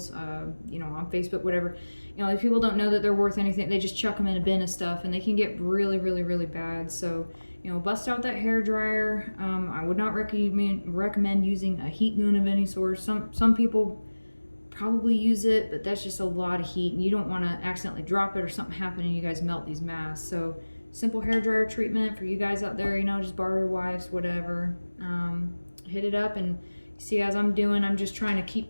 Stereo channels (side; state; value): both; inverted; correlation -1.00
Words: you know, on Facebook, whatever. You know, if people don't know that they're worth anything, they just chuck them in a bin of stuff, and they can get really, really, really bad. So, you know, bust out that hair dryer. I would not recommend using a heat gun of any sort. Some people probably use it, but that's just a lot of heat, and you don't want to accidentally drop it or something happen and you guys melt these masks. So simple hair dryer treatment for you guys out there, you know, just borrow your wife's, whatever. Hit it up, and see, as I'm doing, I'm just trying to keep